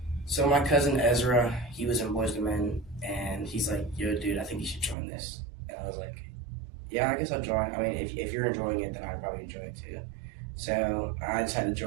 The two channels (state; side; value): drops out; left; at 5.0 s